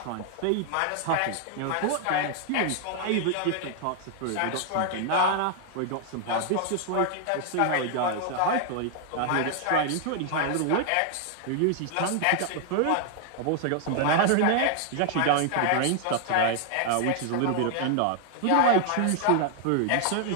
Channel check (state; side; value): different; both; correlation 0.00